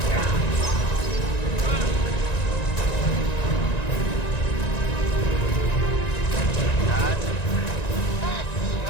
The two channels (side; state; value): right; late; 1.9 ms